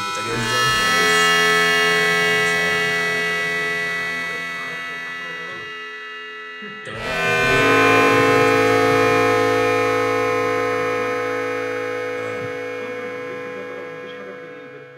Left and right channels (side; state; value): both; identical; correlation 1.00